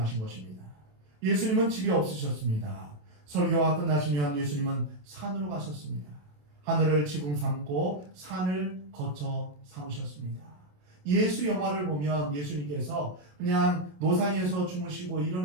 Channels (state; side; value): late; left; 27 ms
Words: 것입니다. 예수님은 집이 없으셨습니다. 설교가 끝나시면 예수님은 산으로 가셨습니다. 하늘을 지붕 삼고 산을 거쳐 삼으셨습니다. 예수 영화를 보면 예수님께서 그냥 노상에서 주무시고